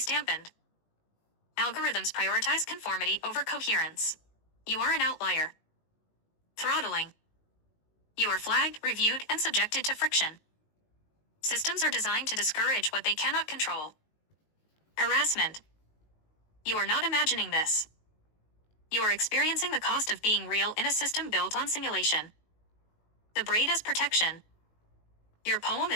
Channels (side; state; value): right; late; 19 ms